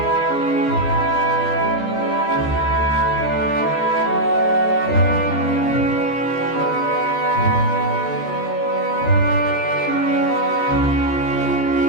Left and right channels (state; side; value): late; right; 14 ms